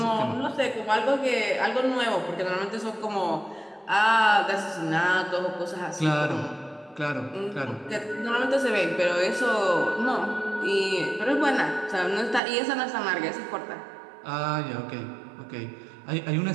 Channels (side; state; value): left; drops out; at 12.4 s